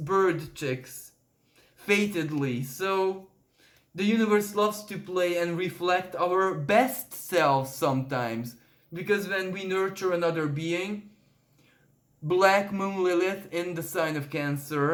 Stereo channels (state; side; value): identical; both; correlation 1.00